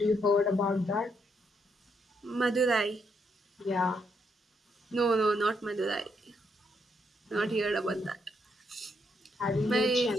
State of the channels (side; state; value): both; normal; correlation 0.76